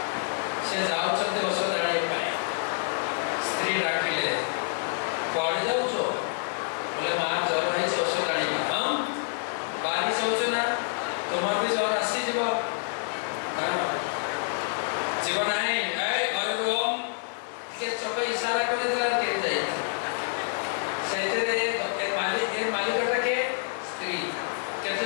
से जाउछते ଔଷଧ ଆଣିବା ପାଇଁ स्त्री डाकिले पड़ जाउछो बोले मां ज्वर हेइ ଔଷଧ इशारा कर दिला के जाई सेते ए मालिकटा के स्त्री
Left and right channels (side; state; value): right; silent; 59 dB below the other